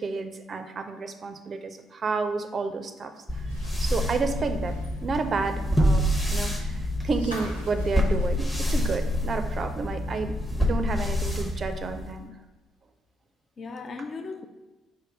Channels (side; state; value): both; normal; correlation 0.80